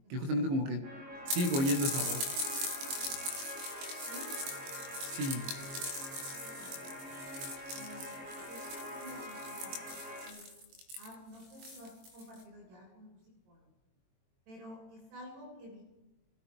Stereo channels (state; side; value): late; left; 22 ms